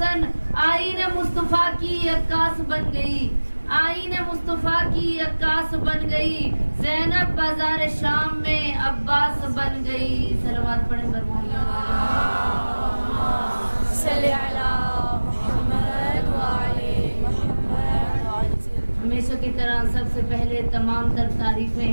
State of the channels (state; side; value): inverted; both; correlation -1.00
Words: آئین مصطفیٰ کی عکاس بن گئی آئین مصطفیٰ کی عکاس بن گئی زینب بازار شام میں عباس بن گئی صلوات پڑھیں صلی علی محمد وعلی محمد. ہمیشہ کی طرح سب سے پہلے تمام تر